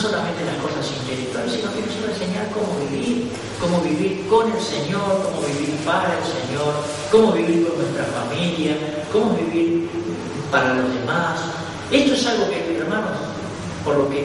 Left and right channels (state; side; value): identical; both; correlation 1.00